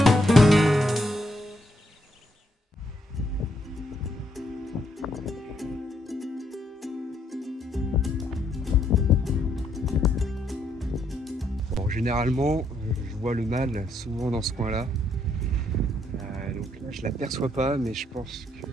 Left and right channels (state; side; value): normal; both; correlation 0.73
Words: Généralement, je vois le mâle souvent dans ce coin-là. Donc là, je ne l'aperçois pas, mais je pense que